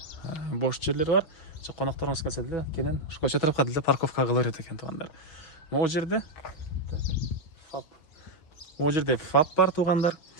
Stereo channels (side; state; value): right; late; 6.2 ms